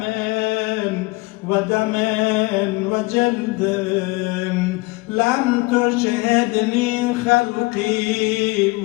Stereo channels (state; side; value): quieter; right; 23.8 dB